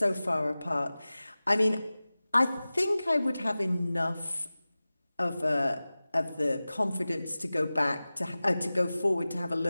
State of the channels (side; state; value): both; inverted; correlation -0.97